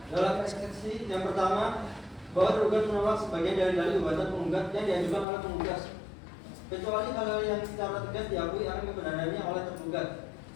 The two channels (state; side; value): drops out; right; at 5.2 s